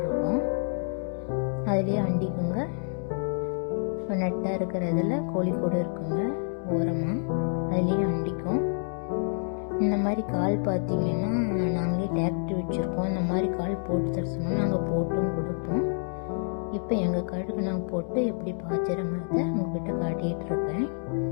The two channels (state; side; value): silent; right; 59 dB below the other